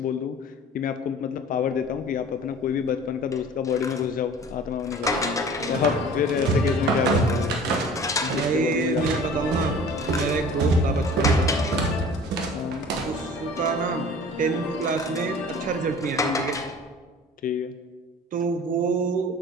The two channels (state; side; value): normal; both; correlation 0.44